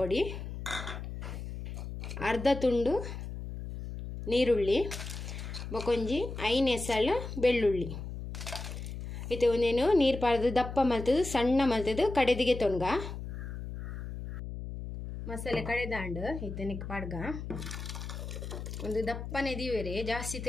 ಅರ್ಧ ತುಂಡು ನೀರುಳ್ಳಿ ಬೊಕೊಂಜಿ 5 ಎಸಳು ಬೆಳ್ಳುಳ್ಳಿ ಇತ್ತೆ ಒಂದೇನು ನೀರು ಪಾಡ್ದು ದಪ್ಪ ಮಲ್ತದು ಸಣ್ಣ ಮಲ್ತದು ಕಡೆದಿಗೆ ತೊನ್ಗ ಮಸಾಲೆ ಕಡೆದಾಂಡು ಇತ್ತೆನೆಕ್ ಪಾಡ್ಗ ಒಂದು ದಪ್ಪನೆ ದಿವೇರೆ ಜಾಸ್ತಿ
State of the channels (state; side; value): noise; left; hum, 8 dB below the sound